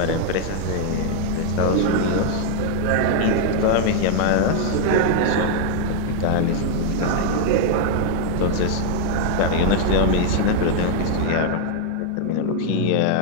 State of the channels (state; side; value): different; both; correlation 0.00